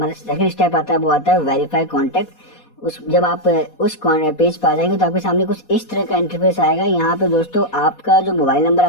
सेकंड स्टेप आता है वो आता है वेरीफाई कॉन्टैक्ट। जब आप उस पेज पर आ जाएंगे तो आपके सामने कुछ इस तरह का इंटरफेस आएगा। यहाँ पे दोस्तों आपका जो मोबाइल नंबर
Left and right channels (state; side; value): late; right; 4.2 ms